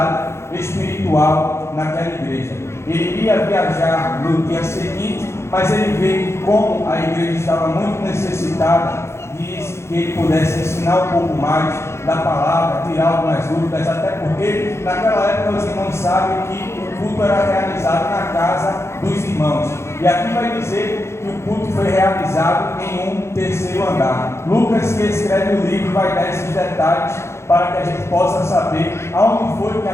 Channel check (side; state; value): right; late; 0.13 ms